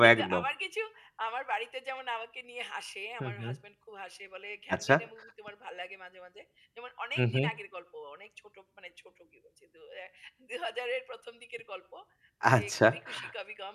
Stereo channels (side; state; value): both; identical; correlation 1.00